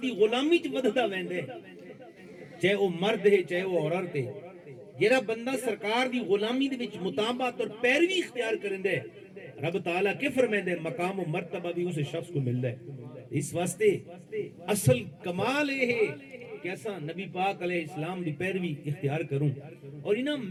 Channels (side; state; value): both; identical; correlation 1.00